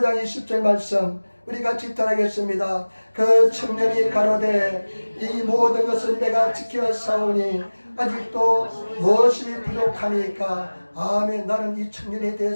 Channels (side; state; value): both; inverted; correlation -1.00